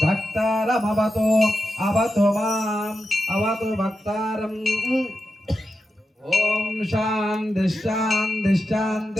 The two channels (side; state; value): both; normal; correlation 0.89